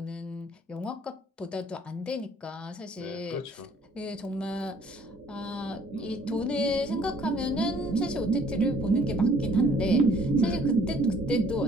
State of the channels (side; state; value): both; normal; correlation 0.59